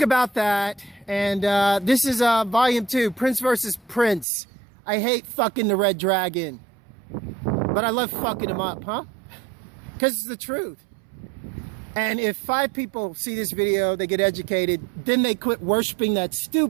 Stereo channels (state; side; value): drops out; left; at 4.2 s